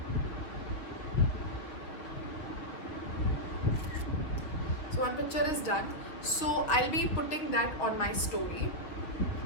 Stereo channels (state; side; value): late; right; 6.3 ms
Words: So one picture is done. So I'll be putting that on my story.